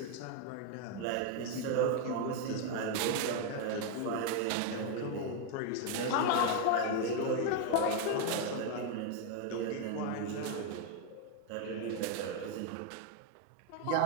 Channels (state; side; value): different; both; correlation 0.01